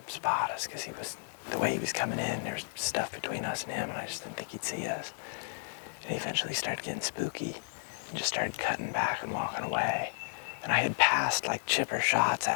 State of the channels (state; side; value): silent; right; digital silence